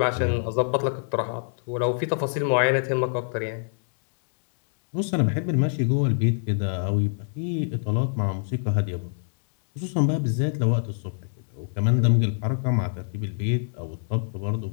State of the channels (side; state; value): right; silent; digital silence